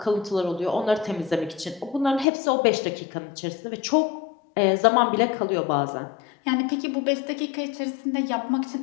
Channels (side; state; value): right; drops out; at 2.2 s